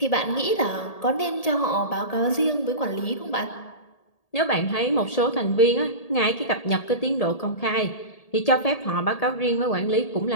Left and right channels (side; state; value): right; late; 1.8 ms